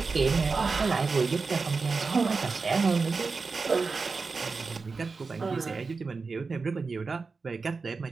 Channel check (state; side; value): quieter; left; 4.4 dB